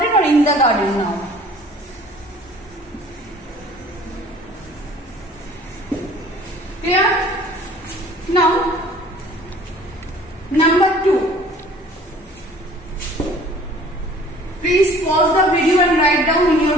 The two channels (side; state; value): both; normal; correlation 0.51